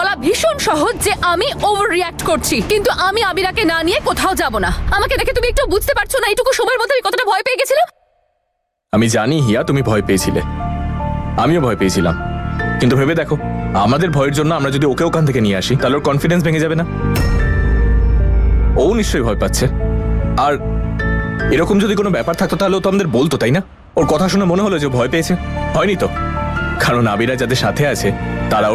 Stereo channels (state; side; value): identical; both; correlation 1.00